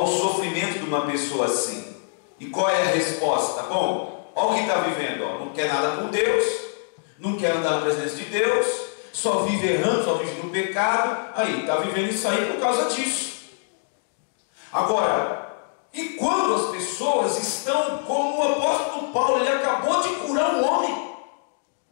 sofrimento de uma pessoa assim. E qual é a resposta? Bom, olha o que está vivendo, não quer nada com Deus, não quer andar na presença de Deus, só vive errando, só vive no pecado. Aí, está vivendo isso aí por causa disso. Agora, e quando as pessoas estão como o apóstolo Paulo, ele acabou de curar um homem,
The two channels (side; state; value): right; silent; digital silence